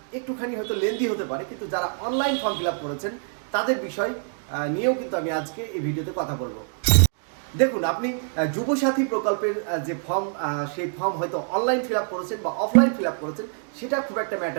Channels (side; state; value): left; silent; digital silence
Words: একটুখানি হয়তো লেন্দি হতে পারে, কিন্তু যারা অনলাইন ফর্ম ফিল আপ করেছেন তাদের বিষয় নিয়েও কিন্তু আমি আজকে এই ভিডিওতে কথা বলবো। দেখুন, আপনি যুবসাথী প্রকল্পের যে ফর্ম, সেই ফর্ম হয়তো অনলাইন ফিল আপ করেছেন বা অফলাইন ফিল আপ করেছেন, সেটা খুব একটা